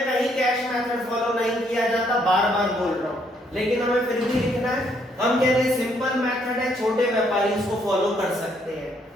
कहीं कैश मेथड फॉलो नहीं किया जाता, बार बार बोल रहा हूं, लेकिन हमें फिर भी लिखना है। हम कह रहे हैं सिंपल मेथड है, छोटे व्यापारी इसको फॉलो कर सकते हैं,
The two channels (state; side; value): normal; both; correlation 0.70